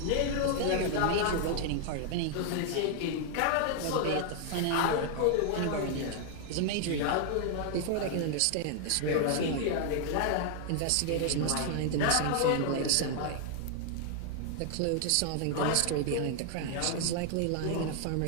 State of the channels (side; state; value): both; different; correlation 0.00